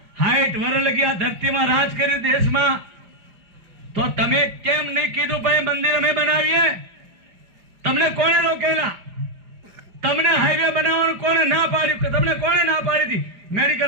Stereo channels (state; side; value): late; left; 4.9 ms